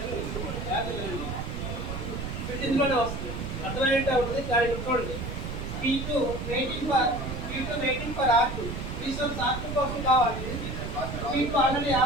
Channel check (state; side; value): noise; right; rumble, 5 dB below the sound